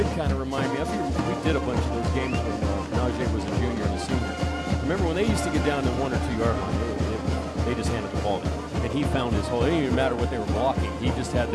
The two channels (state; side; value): identical; both; correlation 1.00